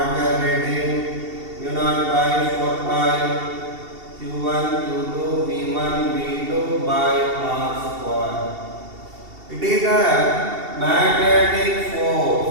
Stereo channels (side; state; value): left; late; 2.7 ms